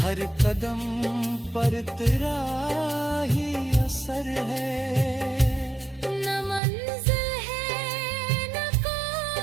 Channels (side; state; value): left; drops out; at 6.6 s